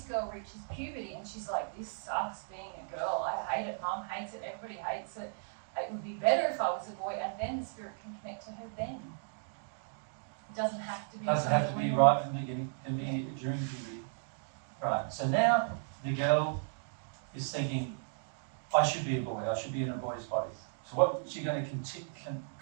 girl reaches puberty and she's like, this sucks being a girl, I hate it, mum hates it, everybody hates it. It would be better if I was a boy, and then the spirit can connect to her then. It doesn't have to be. Doesn't have to be right from the beginning, it can be during puberty. Right, so now the girl is thinking, I should be a boy, I should be in a boy's body. So what is she going to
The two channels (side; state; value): left; silent; digital silence